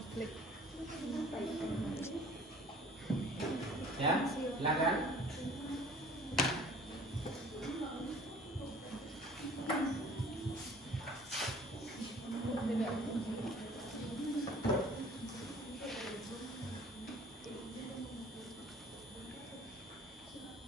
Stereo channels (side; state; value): both; normal; correlation 0.50